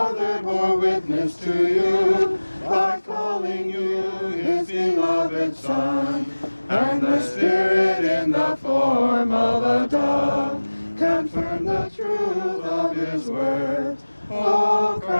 bore witness to you by calling you his beloved Son, and the Spirit in the form of a dove confirmed the truth of his word. O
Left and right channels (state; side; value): inverted; both; correlation -1.00